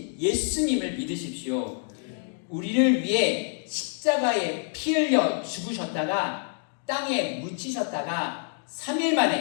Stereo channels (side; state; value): right; silent; 60 dB below the other